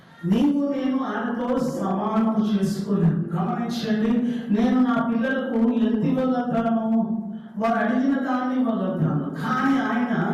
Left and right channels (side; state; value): both; identical; correlation 1.00